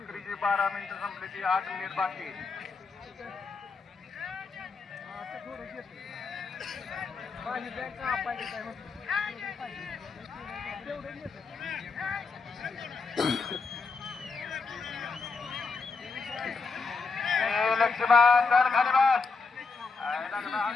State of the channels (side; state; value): right; quieter; 4.5 dB